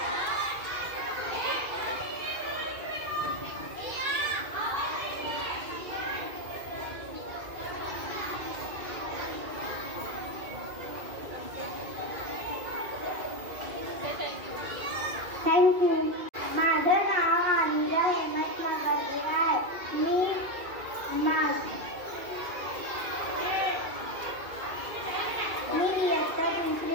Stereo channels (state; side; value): late; left; 2.4 ms